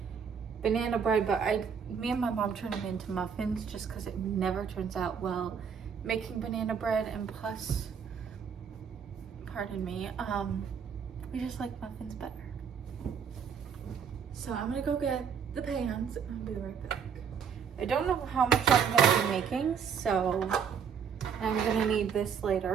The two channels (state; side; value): quieter; left; 7.0 dB